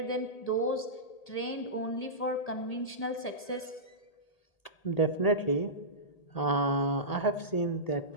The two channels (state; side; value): late; right; 1.8 ms